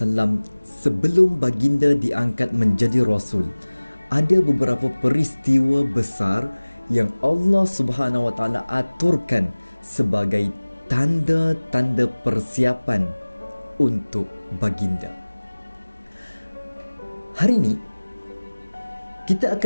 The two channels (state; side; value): inverted; both; correlation -1.00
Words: sebelum baginda diangkat menjadi Rasul, ada beberapa peristiwa besar yang Allah Subhanahu Wa Taala aturkan sebagai tanda-tanda persiapan untuk baginda. Hari ini kita